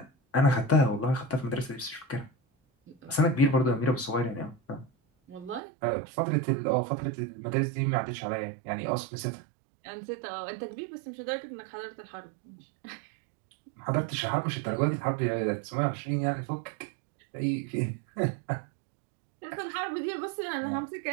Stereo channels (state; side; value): drops out; left; at 5.6 s